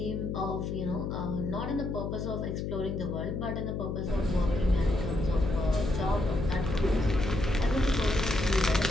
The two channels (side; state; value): left; noise; hum, 3 dB below the sound